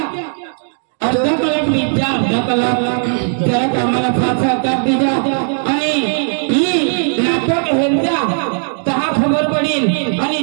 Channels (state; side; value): silent; left; 62 dB below the other